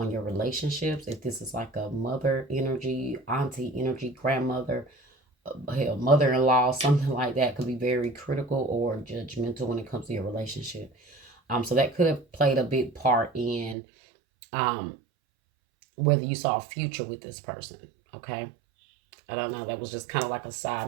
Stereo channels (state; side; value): drops out; left; at 13.8 s